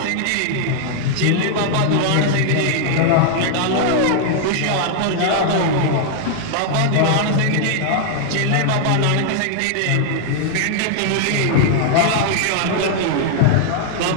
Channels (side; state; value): both; different; correlation -0.01